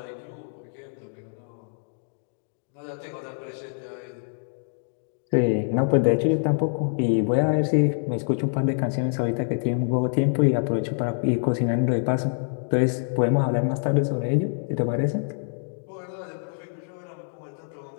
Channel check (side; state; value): right; silent; digital silence